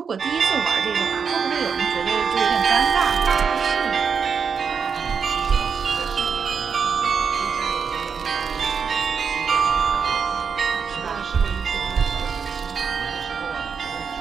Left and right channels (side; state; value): left; quieter; 6.2 dB